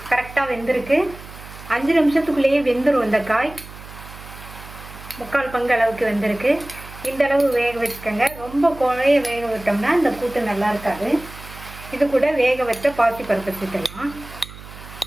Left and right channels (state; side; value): noise; right; hum, 16 dB below the sound